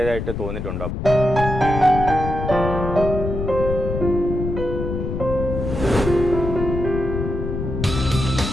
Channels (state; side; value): noise; left; rumble, 4 dB below the sound